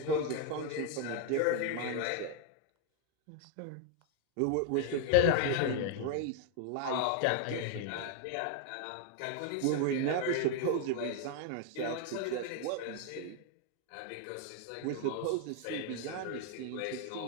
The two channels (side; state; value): both; different; correlation 0.00